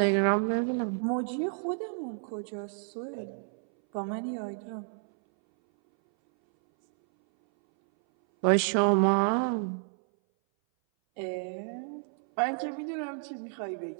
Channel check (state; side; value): silent; left; 58 dB below the other